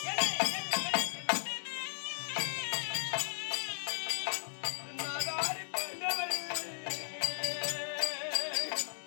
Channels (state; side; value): silent; right; digital silence